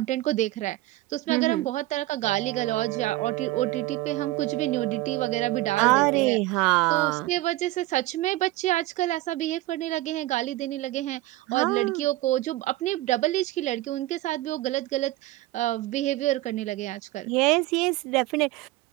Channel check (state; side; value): quieter; left; 17.4 dB